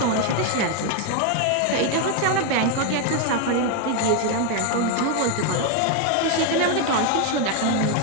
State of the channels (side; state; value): both; different; correlation 0.01